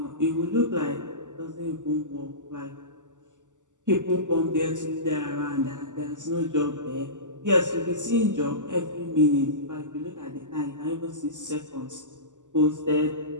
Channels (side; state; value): left; late; 0.86 ms